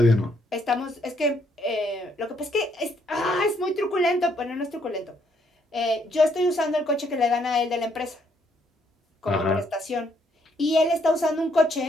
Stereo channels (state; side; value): normal; both; correlation 0.71